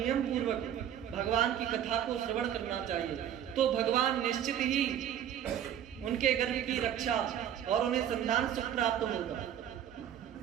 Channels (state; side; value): quieter; left; 10.1 dB